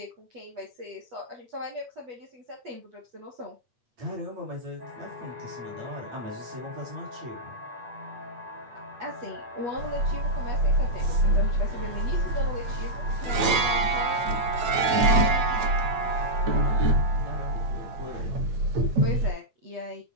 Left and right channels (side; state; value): left; late; 8.9 ms